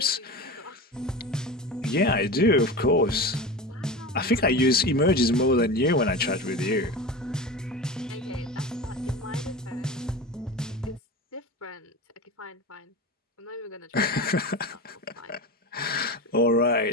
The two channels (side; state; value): both; normal; correlation 0.28